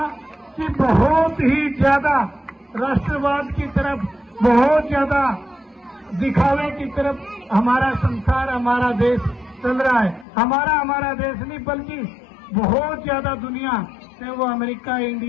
कि बहुत ही ज्यादा राष्ट्रवाद की तरफ, बहुत ज्यादा दिखावे की तरफ हमारा संसार, हमारा देश चल रहा है। हमारा देश नहीं, बल्कि बहुत ज्यादा दुनिया, चाहे वो अमेरिका,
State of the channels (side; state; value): right; drops out; at 10.2 s